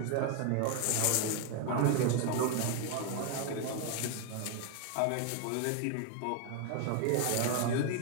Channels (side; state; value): both; different; correlation 0.01